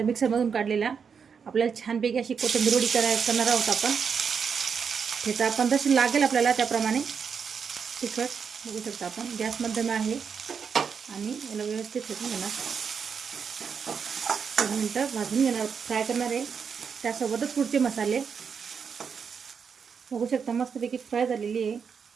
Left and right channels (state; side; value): quieter; left; 6.4 dB